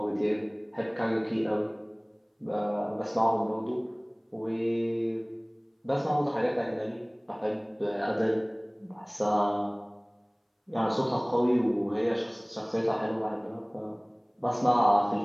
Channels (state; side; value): identical; both; correlation 1.00